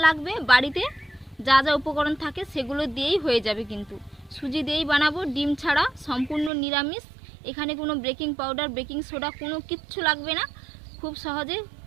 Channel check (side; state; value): left; drops out; at 6.5 s